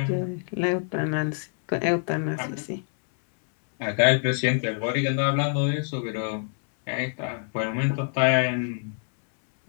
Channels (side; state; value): right; silent; 61 dB below the other